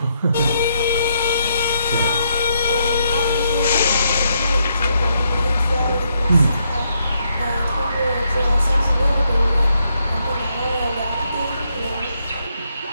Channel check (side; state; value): both; inverted; correlation -0.77